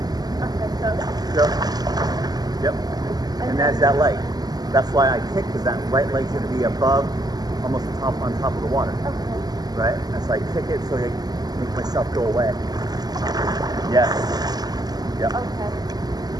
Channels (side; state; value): left; late; 0.19 ms